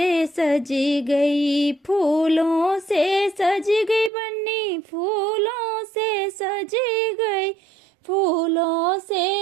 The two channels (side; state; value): left; drops out; at 4.1 s